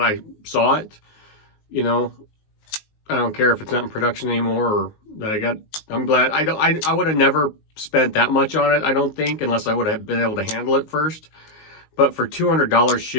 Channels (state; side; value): late; right; 19 ms